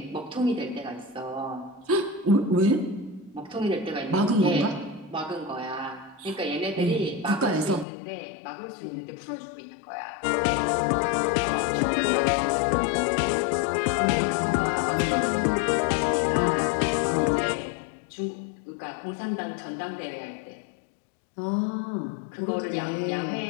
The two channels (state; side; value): drops out; right; at 7.9 s